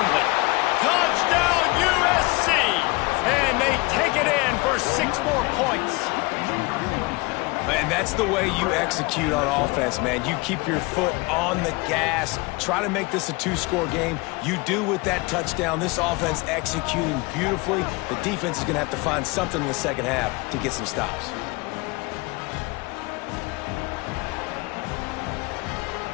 Touchdown, USC! And they take it in for 6 more points. And that's the way you execute on offense, man. You keep your foot on the gas. Try to make this a 2-score game. You do with that touchdown. This offense executing beautifully. The defense is going to have to find something in the second half to get some stops.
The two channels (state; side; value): quieter; right; 25.4 dB